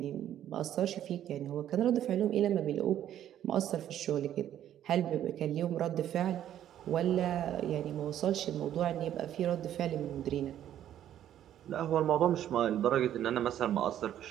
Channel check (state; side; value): quieter; left; 11.1 dB